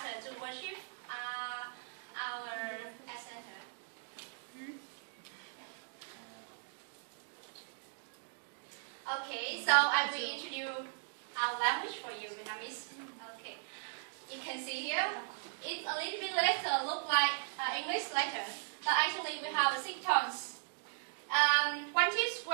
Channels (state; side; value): silent; left; digital silence